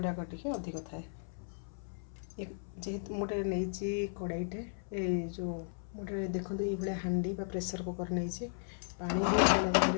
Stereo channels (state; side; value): silent; right; 54 dB below the other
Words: टे अधिक थाए। जेहेतु मोटे नहीं कड़ाईटे जो मोटे देखो ये हांडी प्रेसर कुकर नहीं पानी भी